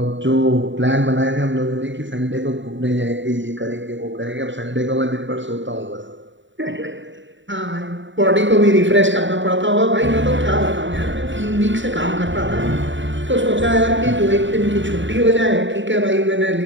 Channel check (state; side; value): late; left; 0.54 ms